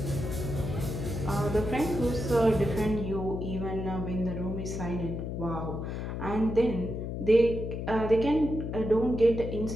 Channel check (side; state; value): left; noise; hum, 4 dB below the sound